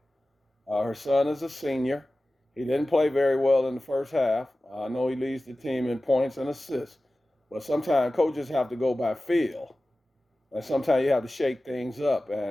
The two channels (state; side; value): normal; both; correlation 0.96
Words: Her son is a senior. He didn't play very well in the first half. I know he leads the team in points and assists, but sometimes coaches have to go by feel, and sometimes you have to shake things up.